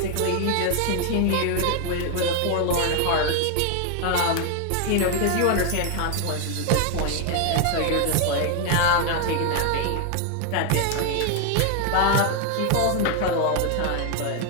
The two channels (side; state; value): both; different; correlation 0.00